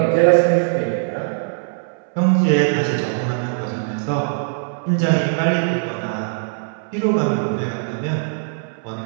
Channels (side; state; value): left; silent; 65 dB below the other